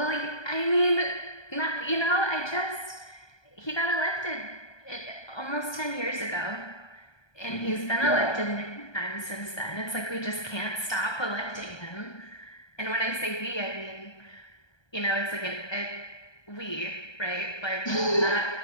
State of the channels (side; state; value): right; late; 1.2 ms